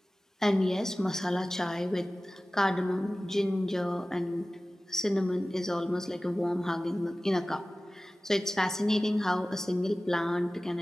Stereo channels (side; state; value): both; normal; correlation 0.97